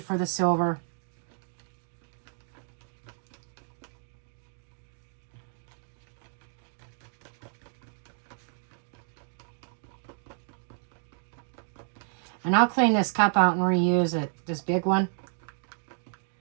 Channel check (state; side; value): silent; left; 57 dB below the other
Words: the silver. And I'll clean this cup out and reuse it, this big one.